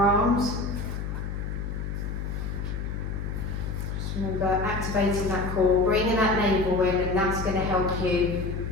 Just remember activating that core, bringing that navel in, and that's going to help you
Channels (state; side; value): noise; left; hum, 4 dB below the sound